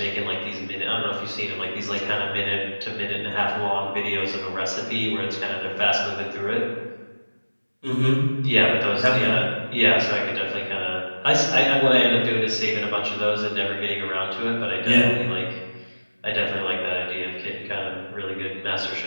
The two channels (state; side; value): inverted; both; correlation -1.00